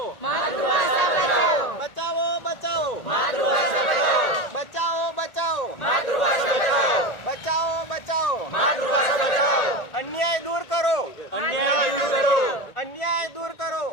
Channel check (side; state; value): right; late; 1.8 ms